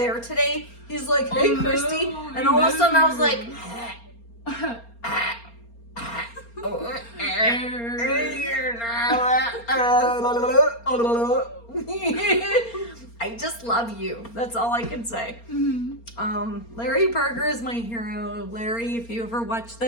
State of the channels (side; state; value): right; late; 4.3 ms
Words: today, he's like, "Hey, Christy," and all of a sudden I was like, I just love you. That's all I can say. Larry Berger is my hero. Larry, if you ever watch